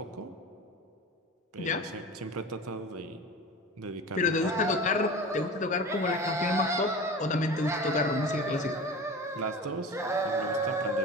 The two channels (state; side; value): normal; both; correlation 0.34